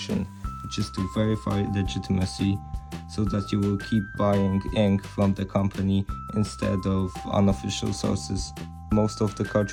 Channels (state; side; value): identical; both; correlation 1.00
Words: which is to verify legitimacy, so that you will keep buying ink from the company instead of unofficial sources. Most of the